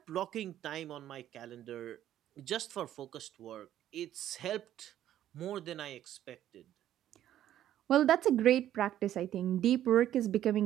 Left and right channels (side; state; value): left; quieter; 11.9 dB